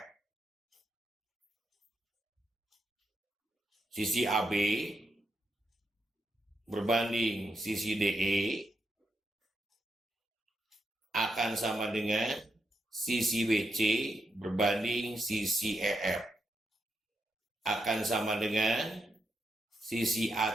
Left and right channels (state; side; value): normal; both; correlation 0.83